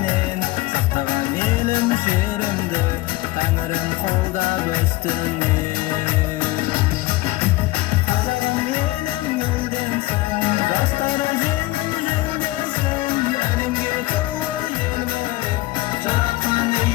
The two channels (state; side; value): quieter; right; 18.9 dB